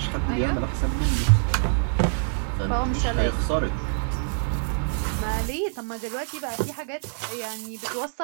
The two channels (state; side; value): silent; left; digital silence